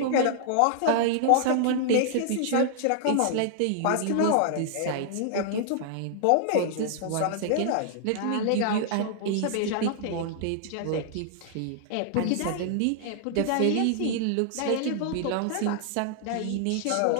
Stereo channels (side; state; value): both; different; correlation -0.01